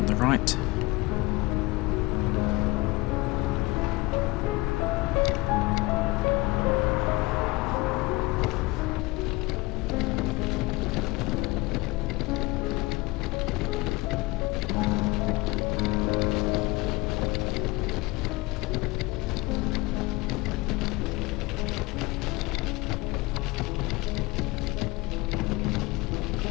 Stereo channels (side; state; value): right; quieter; 22.2 dB